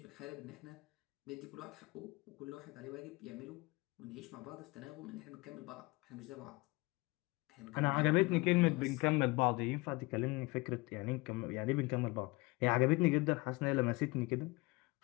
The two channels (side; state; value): right; quieter; 24.2 dB